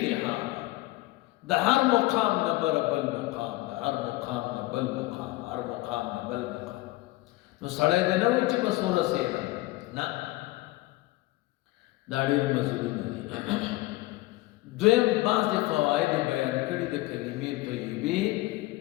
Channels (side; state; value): right; quieter; 19.6 dB